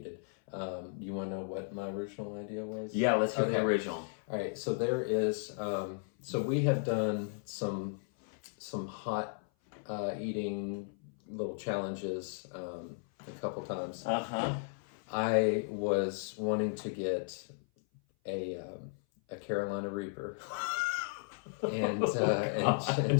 You want to know what my original idea was? Yeah, let's hear the original. All right, so there is. So we have done some hot eating little challenges a couple times. I was wanting to get a Carolina Reaper and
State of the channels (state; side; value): silent; right; 54 dB below the other